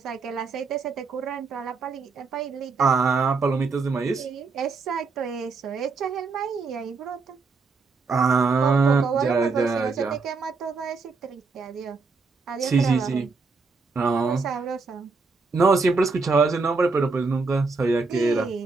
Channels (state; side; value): quieter; left; 4.3 dB